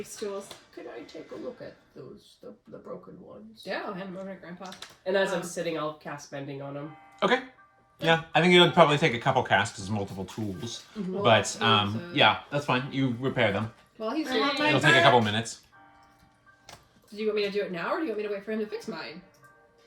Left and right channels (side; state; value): both; identical; correlation 1.00